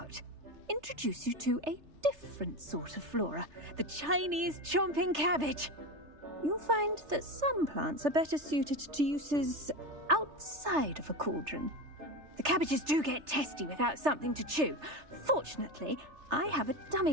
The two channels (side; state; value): left; late; 3.3 ms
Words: Introduce you to a different sort of flora, the Chinese chomping cabbage. You'll find that some plants are better suited to uses outside of a cauldron. The cabbages do get testy without something to chew. Fortunately, I have a